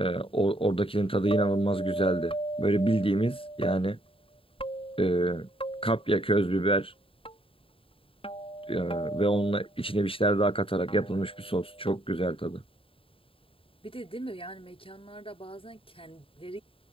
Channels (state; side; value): late; right; 0.27 ms